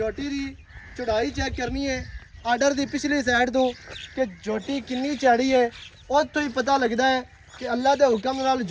ਦੀ ਚੜਾਈ ਚੈੱਕ ਕਰਨੀ ਹੈ ਆਰਡਰ ਦੀ ਪਿਛਲੀ ਸਾਈਡ ਤੋਂ ਕਿ ਝੋਟੀ ਕਿੰਨੀ ਚੜੀ ਹੈ। ਉੱਥੋਂ ਹੀ ਪਤਾ ਲੱਗਦਾ ਹੈ ਕਿ ਅੱਲਾ ਦੇ ਹੁਕਮ ਨਾਲ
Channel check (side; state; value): both; identical; correlation 1.00